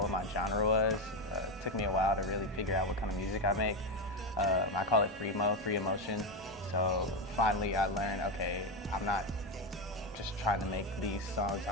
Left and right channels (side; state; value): both; normal; correlation 0.11